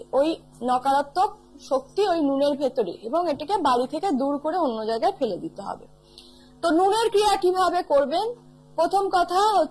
ওই নকারাত্মক শক্তি ওই নুনের ভেতরে, এবং এটাকে বাড়ি থেকে দূর করে অন্য জায়গায় ফেলে দিতে হবে। তো নুনের ক্রিয়া কিভাবে করবেন? প্রথম কথা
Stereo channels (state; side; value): identical; both; correlation 1.00